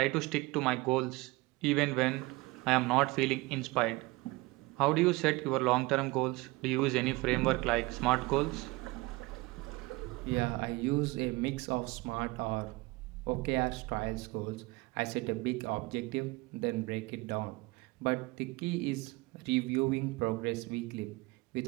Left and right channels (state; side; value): quieter; left; 22.8 dB